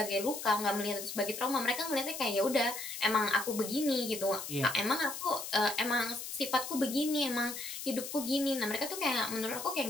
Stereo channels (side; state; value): left; noise; hiss, 8 dB below the sound